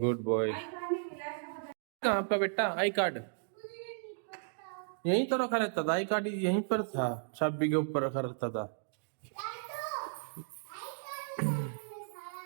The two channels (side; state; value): left; silent; digital silence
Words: boy. कहाँ आपका बेटा आई कार्ड? यहीं तो रखा रहता था, आई कार्ड यहीं पर था, चाबी के ऊपर रखा रहता था।